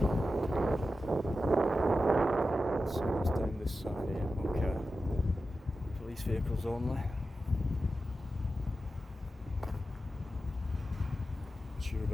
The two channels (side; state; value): both; normal; correlation 0.91